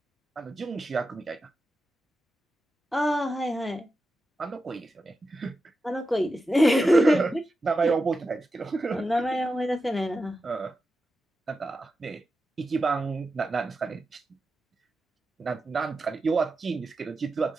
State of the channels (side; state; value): both; normal; correlation 0.90